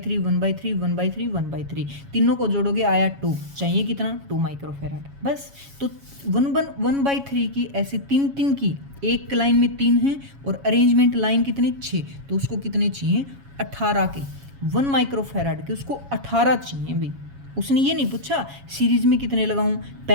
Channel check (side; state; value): left; late; 7.2 ms